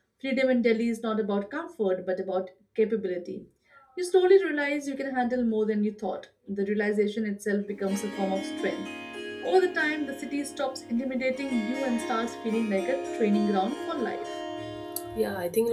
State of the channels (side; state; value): both; identical; correlation 1.00